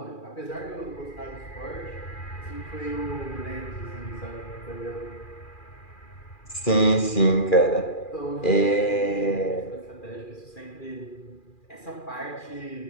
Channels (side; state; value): right; late; 2.4 ms